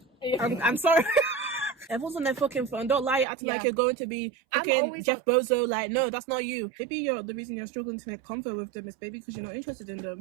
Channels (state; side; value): drops out; left; at 3.2 s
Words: I'm sorry. Everyone's on their fucking phone. Don't lie, acting like you're going to be fucking Jeff Bezos. Like, no, that's not you. Maybe the reason you're struggling to make comfort with them is maybe because you're not interested in